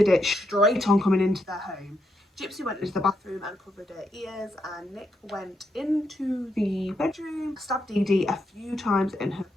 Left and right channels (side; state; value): both; normal; correlation 0.81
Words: it straight on coming into their home. Gypsy went into the bathroom and covered her ears, and Nick went into the bedroom, stabbed Dee Dee a few times in her